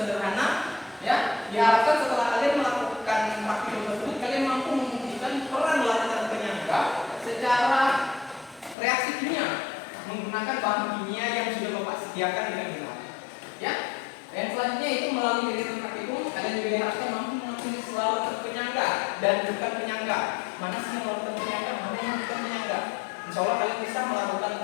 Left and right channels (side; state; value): right; drops out; at 8.8 s